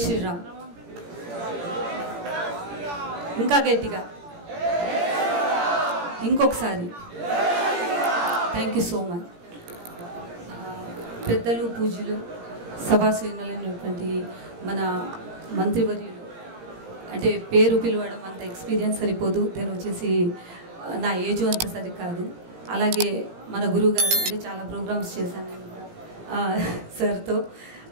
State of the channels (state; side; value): late; left; 17 ms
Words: శ్రీరామ్. ఇంకా గట్టిగా ఇంకొకసారి థ్యాంక్ యూ సో మచ్. పెద్దలు పూజలు సభాశ్రేణులైనటువంటి మన మంత్రివర్యులు అంటే పేరు పిలవడం అంత ఎక్స్పీరియన్స్ సరిపోదు, నేను వచ్చేసి నా ఏజ్ అంత సరికాదు. అలాగే మన గురువు గారు అంటే చాలా ప్రోగ్రామ్స్ చేశాను సార్తో,